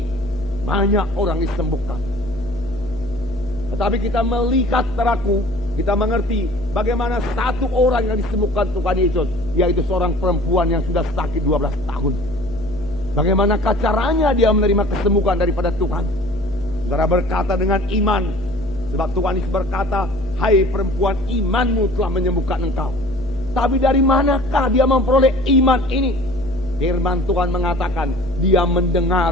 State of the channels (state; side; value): noise; left; hum, 14 dB below the sound